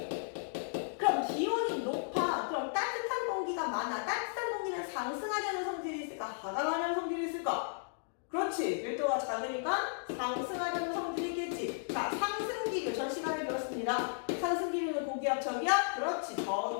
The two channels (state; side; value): silent; right; digital silence